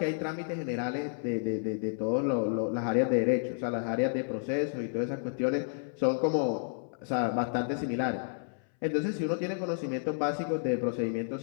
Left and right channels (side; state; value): right; silent; 57 dB below the other